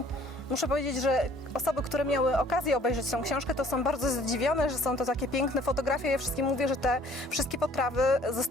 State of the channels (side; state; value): both; normal; correlation 0.56